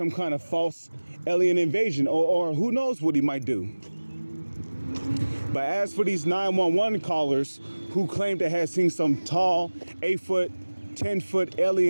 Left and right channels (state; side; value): inverted; both; correlation -1.00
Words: kind of false alien invasion, or who knows what he might do. But as for these 911 callers who claim to have seen some tall 8-foot, 10-foot